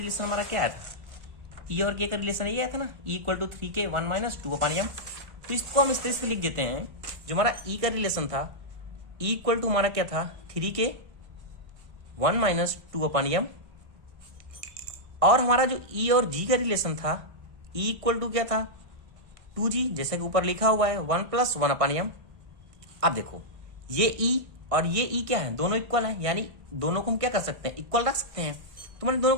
हमारा क्या आया था, ई और के का रिलेशन ये आया था ना, ई = 3k 1 - 2/m। तो इसको हम इस तरह से लिख देते हैं, जो हमारा ई का रिलेशन था, ई इक्वल टू हमारा क्या था 3k 1 - 2/m, और हमारा जो ई और जी का रिलेशन था, ई इक्वल टू क्या था 2g, जैसे कि ऊपर लिखा हुआ है 1 + 1/m। अब देखो ये ई और ये ई क्या है, दोनों इक्वल है, यानी दोनों को हम क्या कर सकते हैं, इक्वल रख सकते हैं। तो मैंने दोनों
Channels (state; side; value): late; left; 1.5 ms